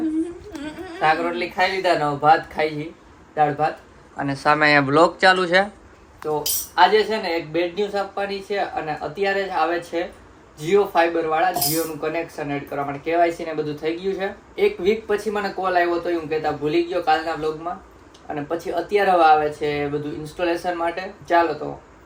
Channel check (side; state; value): both; identical; correlation 1.00